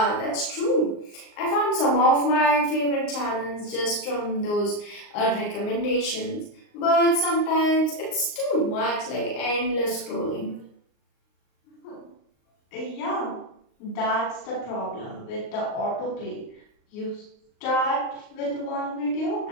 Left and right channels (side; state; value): right; late; 38 ms